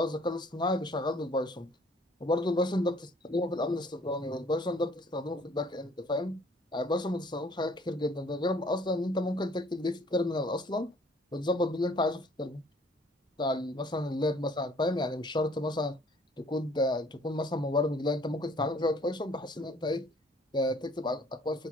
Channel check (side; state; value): both; normal; correlation 0.57